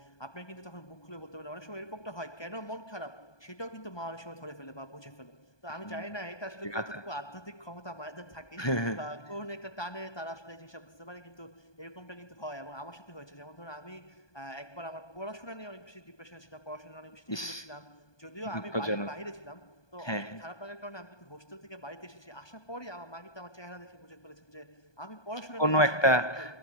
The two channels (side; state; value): right; late; 1.2 ms